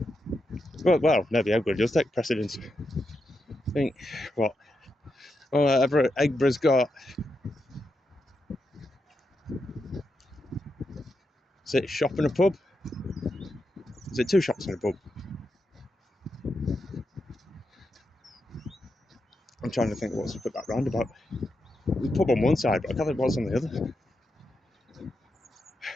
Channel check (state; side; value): normal; both; correlation 0.85